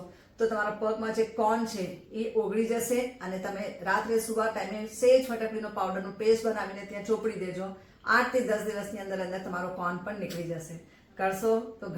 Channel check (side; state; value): both; identical; correlation 1.00